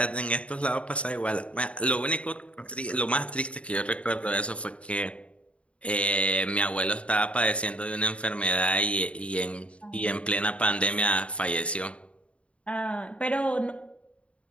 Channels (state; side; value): late; right; 0.061 ms